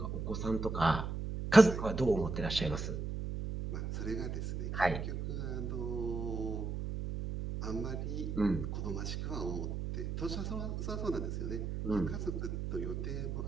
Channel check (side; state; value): right; noise; hum, 3 dB below the sound